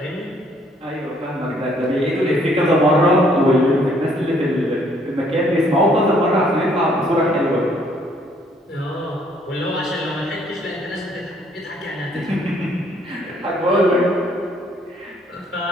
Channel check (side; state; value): both; normal; correlation 0.64